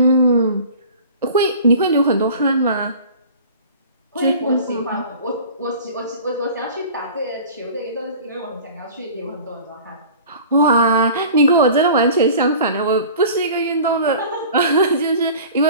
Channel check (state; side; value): inverted; both; correlation -0.42